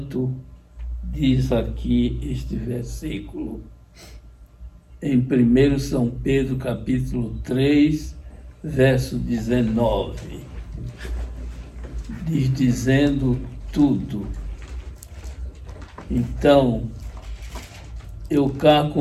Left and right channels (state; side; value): identical; both; correlation 1.00